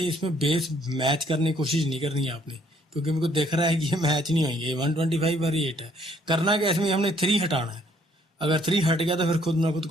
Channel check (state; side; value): normal; both; correlation 0.64